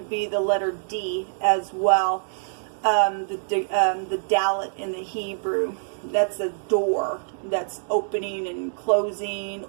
be the letter D as well. The Dalet in the Hebrew, that's a door that's opening and closing,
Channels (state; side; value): silent; left; digital silence